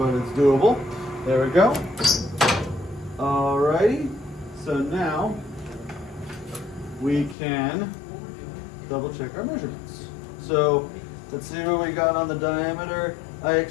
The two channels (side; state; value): right; drops out; at 7.4 s